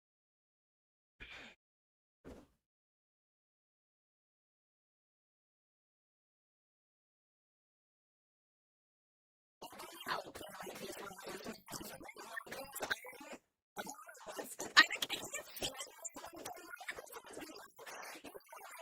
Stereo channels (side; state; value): both; identical; correlation 1.00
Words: I really hope they like these roses, man. If they don't like these, I don't know what's I can't see them not liking the roses. But you know how